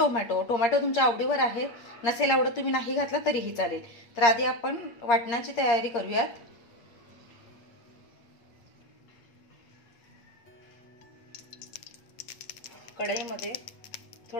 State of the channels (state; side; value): late; right; 8.6 ms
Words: तुमच्या आवडीवर आहे. नसेल आवडत तुम्ही नाही घातला तरीही चालेल. तर आधी आपण वाटणाची तयारी करूयात. कढईमध्ये